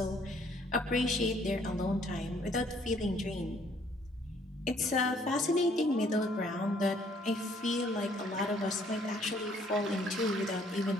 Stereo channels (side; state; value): both; normal; correlation 0.63